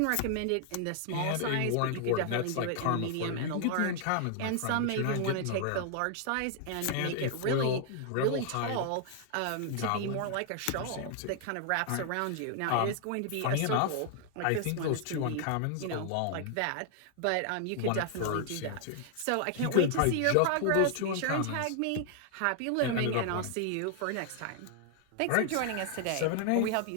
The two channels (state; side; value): different; both; correlation 0.00